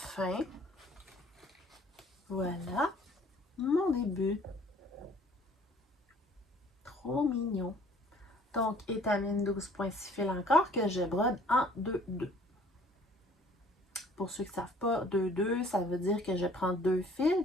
Voilà mon début. Trop mignon. Donc, étamine 12.6 fils encore que je brode en 2-2. Pour ceux qui ne savent pas, 2-2, ça veut dire que je prends 2 fils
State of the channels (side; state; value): both; normal; correlation 0.56